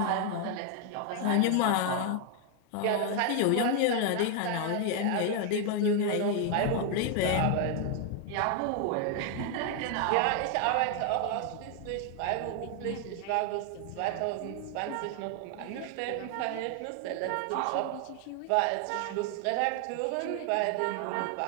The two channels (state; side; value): different; both; correlation 0.00